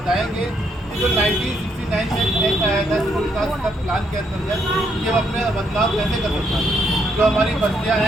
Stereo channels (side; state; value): both; normal; correlation 0.74